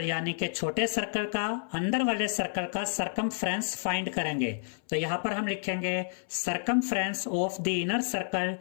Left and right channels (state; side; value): silent; right; 58 dB below the other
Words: यानी कि छोटे सर्कल का अंदर वाले सर्कल का सरकमफ्रेंस फाइंड करेंगे। तो यहां पर हम लिखेंगे circumference of the inner circle